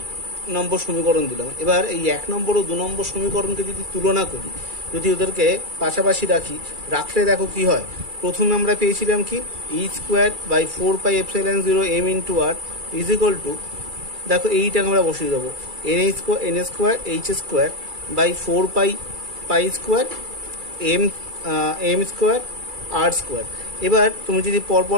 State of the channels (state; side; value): late; left; 2.3 ms